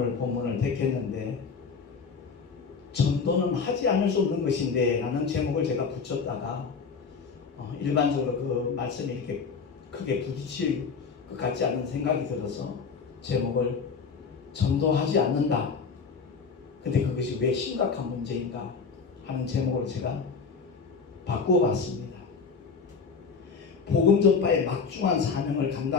본문을 택했는데, 전도는 하지 않을 수 없는 것인데 라는 제목을 제가 붙였다가 일반적으로 그 말씀이 이렇게 크게 부딪힐 것 같지 않은 생각이 들어서 제목을 전도하지 않는다. 근데 그것이 왜 심각한 문제인가 하는 제목을 제가 바꾸어 봤습니다. 복음 전파의 막중한 사명을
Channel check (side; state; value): right; quieter; 5.3 dB